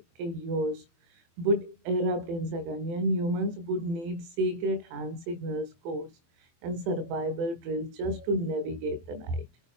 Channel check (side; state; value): left; late; 24 ms